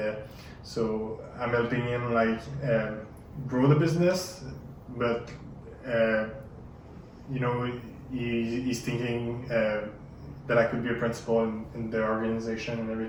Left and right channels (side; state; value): both; identical; correlation 1.00